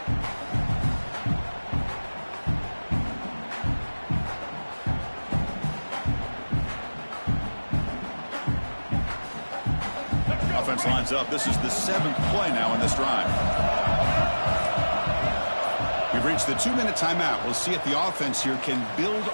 Offense lines up. This is the 7th play now in this drive. We've reached the 2-minute timeout. We'll see if the offense here can build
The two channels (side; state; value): both; inverted; correlation -1.00